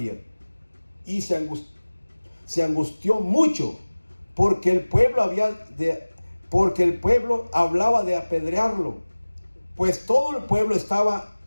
Y se angustió mucho porque el pueblo hablaba de apedrearlo, pues todo el pueblo estaba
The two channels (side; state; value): both; inverted; correlation -1.00